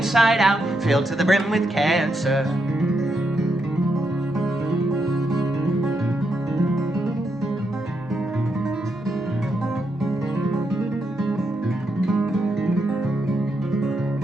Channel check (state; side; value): normal; both; correlation 0.81